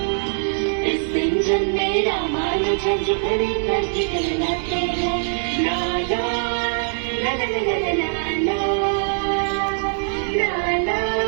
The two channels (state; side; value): silent; left; digital silence